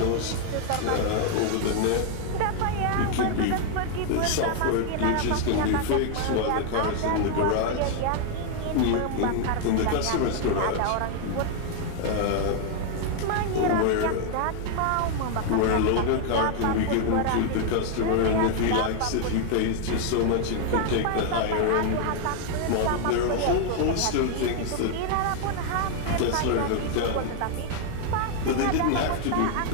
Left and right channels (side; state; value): both; different; correlation 0.00